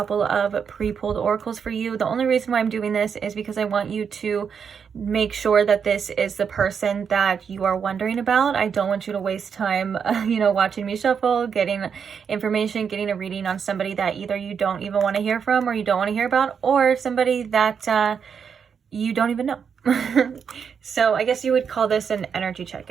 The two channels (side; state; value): left; quieter; 6.8 dB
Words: of pre-pulled oracles for you. The only reason why I'm doing this is because I want you to make sure that this is the person that you are wondering about. I don't want you to waste time, watching me shuffle, getting information, getting a reading on somebody that either you don't even want to hear from, or you don't want to hear about, or somebody that you don't even know. So I guess you would call this an energy